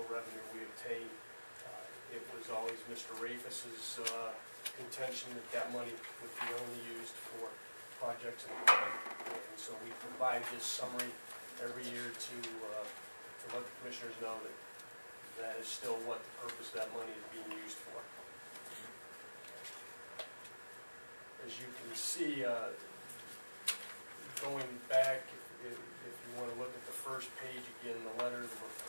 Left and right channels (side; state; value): both; inverted; correlation -1.00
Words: revenue we obtained. It was always Mr. Rafus's contention that that money would be only used for projects and equipment. And so we provide this summary every year to let the commissioners know that that is still what the purpose of that money is being used for. As you can see, going back, if you want to look at the first page again, the letter, the